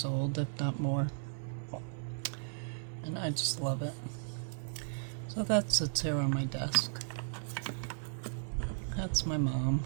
old, if not more. And I just love it. So that sits here on my desk. That's my mom.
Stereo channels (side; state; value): left; silent; digital silence